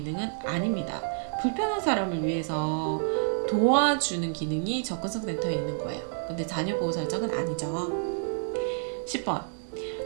아닙니다. 불편한 사람을 위해서 도와주는 기능이 접근성 센터에 있는 거예요. 근데 자녀 보호 설정은 아니죠. 10번.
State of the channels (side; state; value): left; silent; digital silence